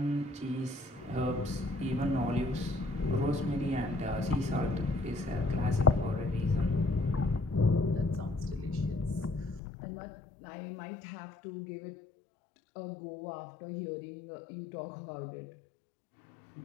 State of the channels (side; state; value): right; drops out; at 9.6 s